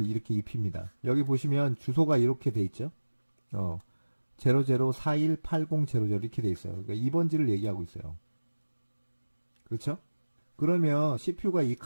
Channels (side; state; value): both; inverted; correlation -1.00